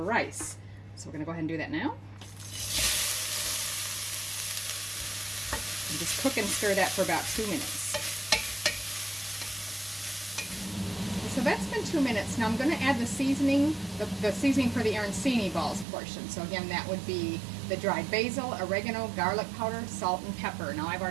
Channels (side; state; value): left; drops out; at 15.9 s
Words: rice. So we're going to go ahead and do that now. And just cook and stir that for about 2 minutes. So that's been 2 minutes. Now I'm going to add the seasoning, the seasoning for the arancini balls portion. So again, that would be the dried basil, oregano, garlic powder, salt, and pepper. Now I've